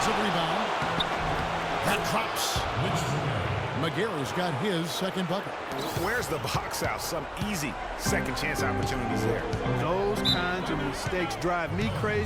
rebound. That drops. McGarry's got his second bucket. Where's the box out? Some easy second chance opportunities there. Those kinds of mistakes drive me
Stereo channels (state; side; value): identical; both; correlation 1.00